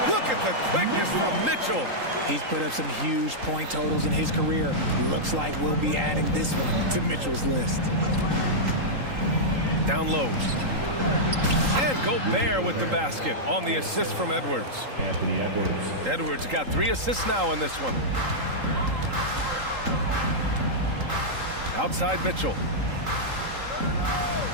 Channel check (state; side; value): late; left; 3.8 ms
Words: Look at the quickness from Mitchell. He's put up some huge point totals in his career. Looks like we'll be adding this one to Mitchell's list. Down low. And Gobert with the basket on the assist from Edwards. Anthony Edwards. Edwards got 3 assists now in this one. Outside Mitchell.